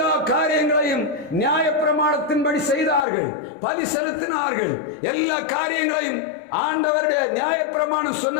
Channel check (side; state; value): right; drops out; at 3.1 s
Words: காரியங்களையும் நியாயப்பிரமாணத்தின்படி செய்தார்கள், பலி செலுத்தினார்கள். எல்லா காரியங்களையும் ஆண்டவருடைய நியாயப்பிரமாணம்